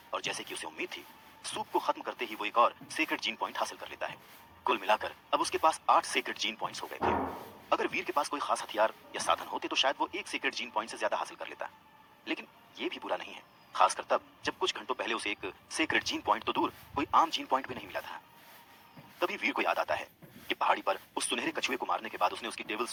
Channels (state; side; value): identical; both; correlation 1.00